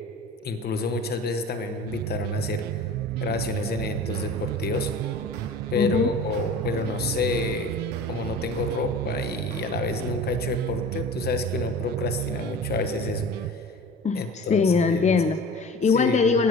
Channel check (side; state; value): both; normal; correlation 0.38